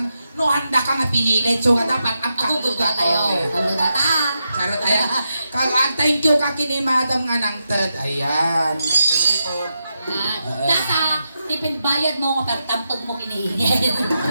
No, handa ka nga pinilit. So, nga dapat ang Ako gugwa tayo! Ano na ta? Charot, ayan. Thank you ka kini madam nga nang third. Ayan. Data! Tipid bayad mo nga pertampag mo kinihingi.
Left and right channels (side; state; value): both; inverted; correlation -0.86